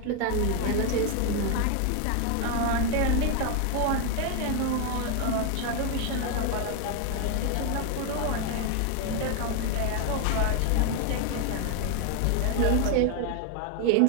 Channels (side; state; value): both; different; correlation 0.01